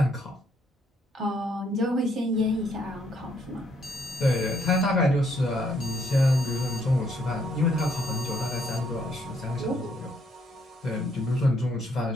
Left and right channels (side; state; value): both; normal; correlation 0.70